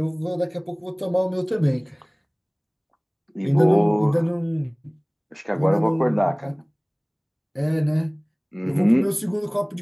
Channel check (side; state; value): both; identical; correlation 1.00